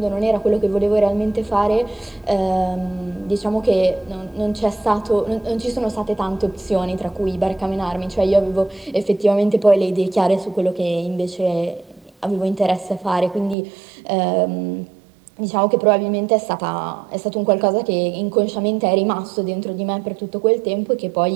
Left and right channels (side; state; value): left; drops out; at 13.6 s